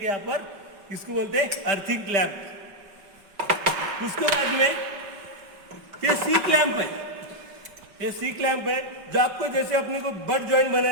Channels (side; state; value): left; late; 5.3 ms